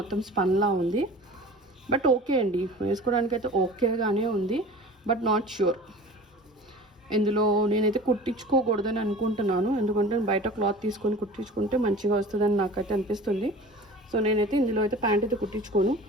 స్పన్లా ఉంది. బట్ ఓకే అండి, వేసుకోవడానికి అయితే ఓకేగానే ఉంది. బట్ నాట్ ష్యూర్, ఇందులో నేనైతే కుట్టించుకోకూడదని అనుకుంటున్నాను. ఎందుకంటే బయట క్లాత్ తీసుకొని కుట్టించుకుంటే మంచిగా వస్తుందని నాకైతే అనిపిస్తుంది. సో నేనైతే ఇందులో అయితే ప్యాంట్ అయితే కుట్టించుకోను.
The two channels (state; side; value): normal; both; correlation 0.40